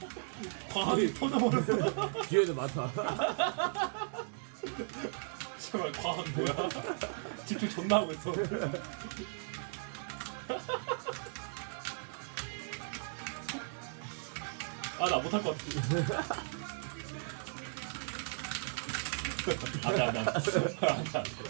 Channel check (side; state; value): left; silent; digital silence